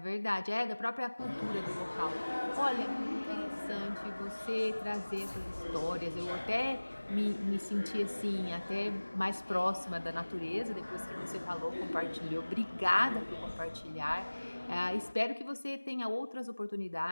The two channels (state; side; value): inverted; both; correlation -1.00